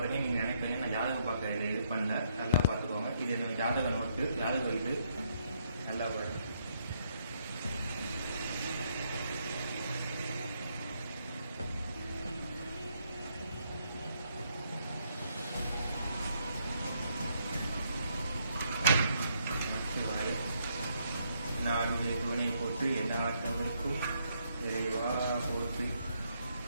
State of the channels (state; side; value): inverted; both; correlation -0.74